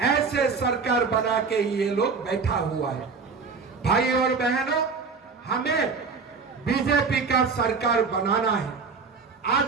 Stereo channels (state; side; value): quieter; left; 5.0 dB